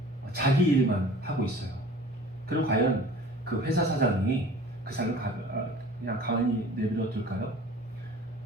자기 일만 하고 있어요. 그럼 과연 그 회사 사장이 그 사람을 그냥 가만히 내버려 둘까요?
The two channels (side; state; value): both; normal; correlation 0.45